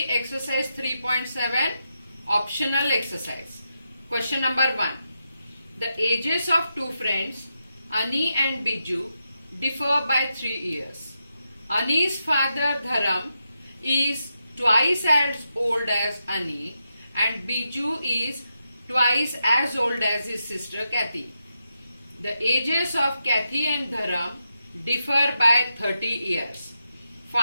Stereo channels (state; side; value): inverted; both; correlation -0.86